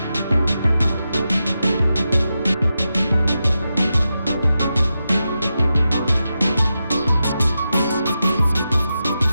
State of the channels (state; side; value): inverted; both; correlation -0.89